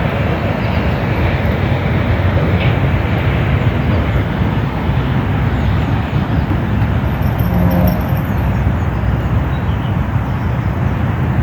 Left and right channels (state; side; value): identical; both; correlation 1.00